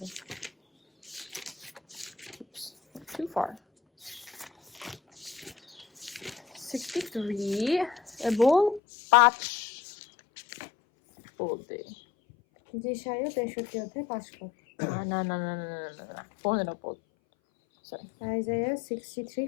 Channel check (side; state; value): right; drops out; at 8.8 s